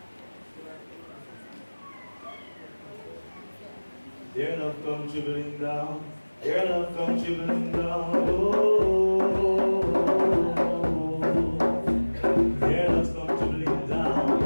Dear love come trickling down, dear love come trickling down, oh, dear love come trickling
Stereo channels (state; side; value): inverted; both; correlation -1.00